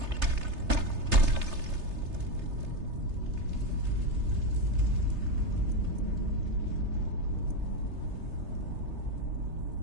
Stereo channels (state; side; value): late; left; 3.3 ms